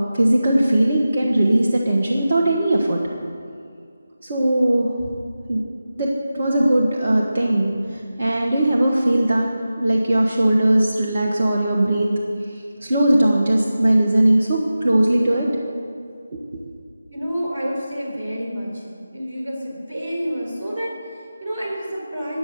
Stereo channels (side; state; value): both; inverted; correlation -0.94